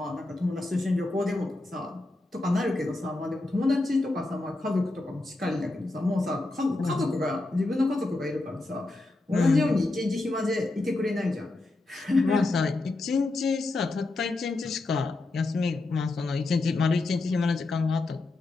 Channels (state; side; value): quieter; right; 3.0 dB